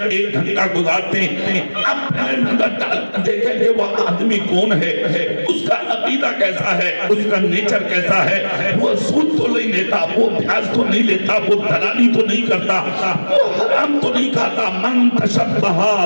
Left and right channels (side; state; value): both; inverted; correlation -1.00